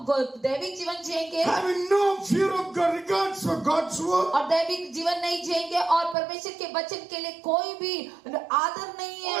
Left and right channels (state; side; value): drops out; left; at 6.2 s